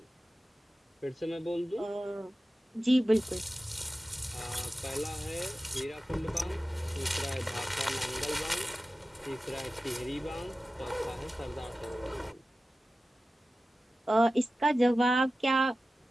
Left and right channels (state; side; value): normal; both; correlation 0.95